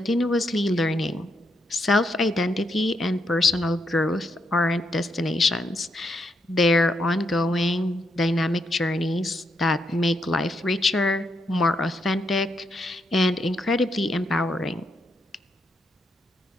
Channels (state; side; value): normal; both; correlation 0.79